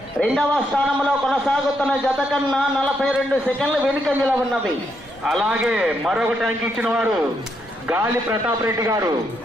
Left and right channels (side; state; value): right; noise; rumble, 26 dB below the sound